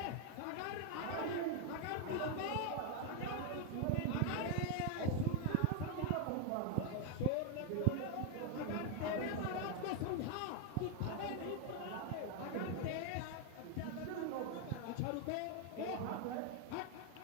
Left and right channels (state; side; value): different; both; correlation 0.01